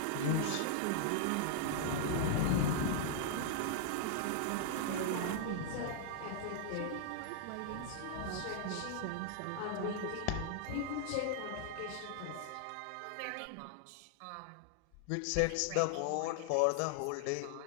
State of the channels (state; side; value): different; both; correlation -0.01